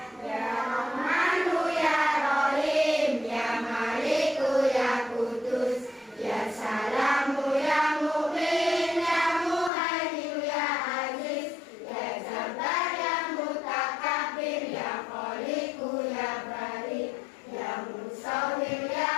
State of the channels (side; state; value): right; drops out; at 9.7 s